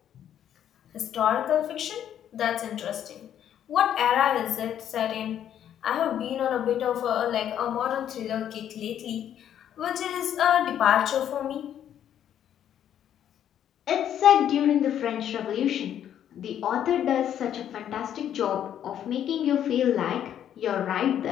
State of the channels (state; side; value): quieter; right; 10.1 dB